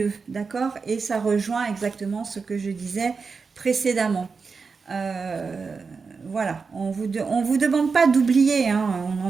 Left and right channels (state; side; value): quieter; left; 4.9 dB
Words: d'accord? Et ça rejoint exactement ce que je disais précédemment. Euh, voilà, on vous demande pas d'oublier, hein,